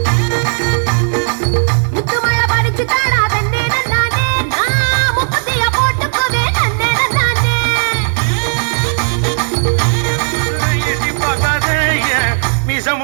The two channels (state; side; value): silent; left; digital silence